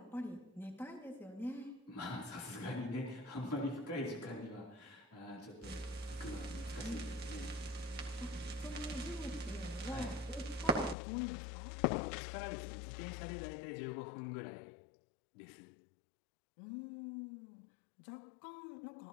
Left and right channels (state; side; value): drops out; right; at 11.0 s